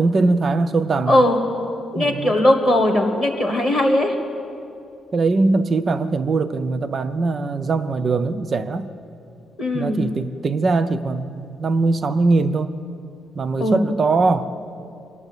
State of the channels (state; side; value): normal; both; correlation 0.86